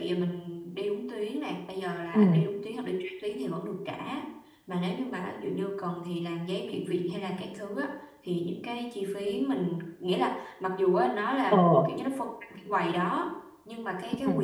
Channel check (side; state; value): both; identical; correlation 1.00